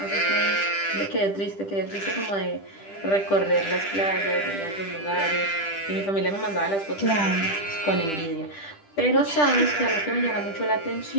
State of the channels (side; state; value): right; late; 10 ms